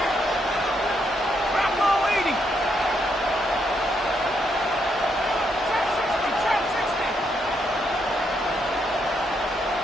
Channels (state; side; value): normal; both; correlation 0.77